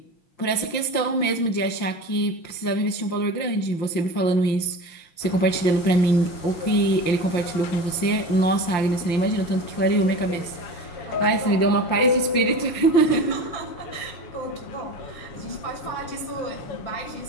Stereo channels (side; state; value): right; late; 5.8 ms